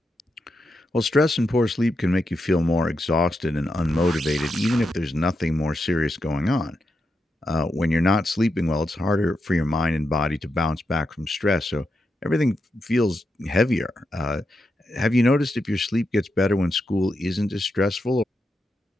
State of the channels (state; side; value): normal; both; correlation 0.85